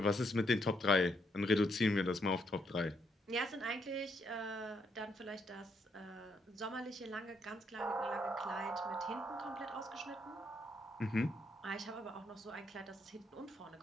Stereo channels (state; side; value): normal; both; correlation 0.75